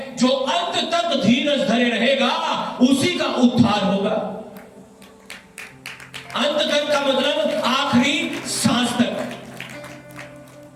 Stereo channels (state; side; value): identical; both; correlation 1.00